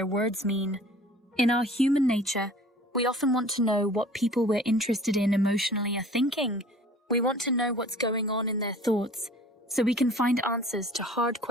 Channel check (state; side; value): normal; both; correlation 0.48